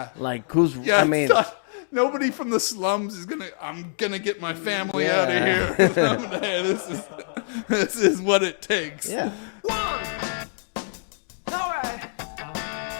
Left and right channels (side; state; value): right; silent; digital silence